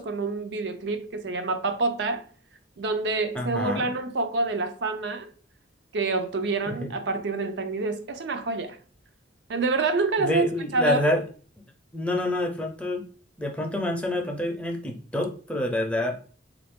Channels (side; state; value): both; normal; correlation 0.16